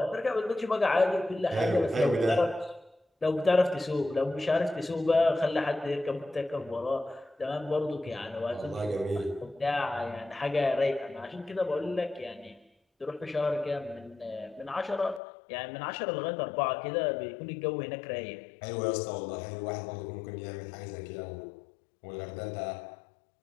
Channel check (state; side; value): drops out; right; at 15.2 s